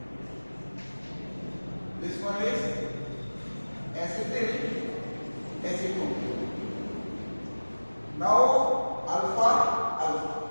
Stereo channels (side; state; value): both; inverted; correlation -1.00